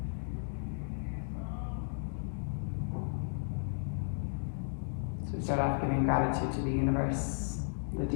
So we start off giving gratitude to the universe, the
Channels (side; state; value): right; silent; digital silence